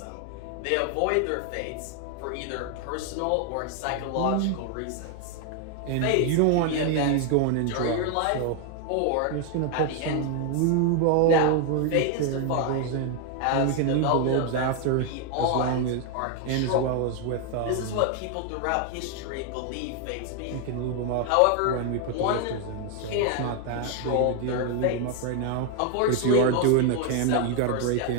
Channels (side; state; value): both; different; correlation 0.01